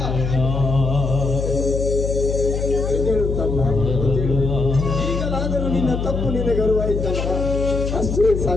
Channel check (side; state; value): left; noise; hum, 3 dB below the sound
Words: ಈಗಲಾದರೂ ನಿನ್ನ ತಪ್ಪು ನಿನಗೆ ಅರಿವಾಯಿತಲ್ಲ, ಅಷ್ಟೇ